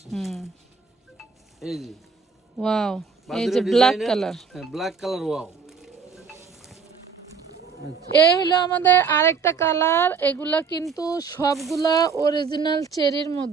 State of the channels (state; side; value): quieter; left; 5.6 dB